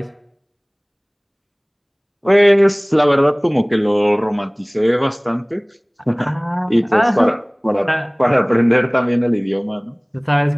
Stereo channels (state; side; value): identical; both; correlation 1.00